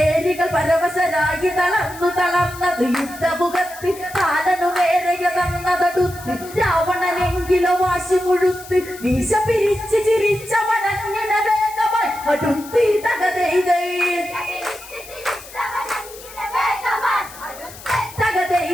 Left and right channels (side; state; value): left; noise; hiss, 17 dB below the sound